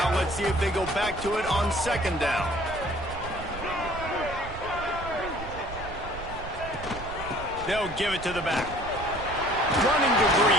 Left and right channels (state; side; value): noise; right; rumble, 11 dB below the sound